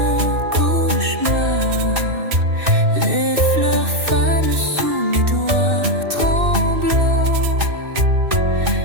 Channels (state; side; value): late; left; 2.6 ms